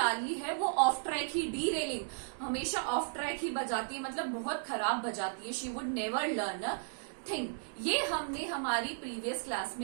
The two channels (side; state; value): left; silent; digital silence